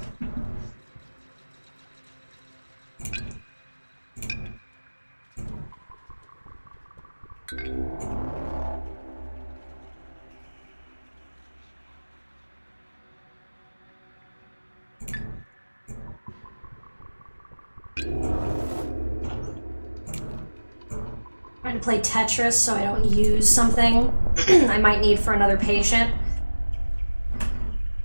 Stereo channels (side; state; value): both; inverted; correlation -1.00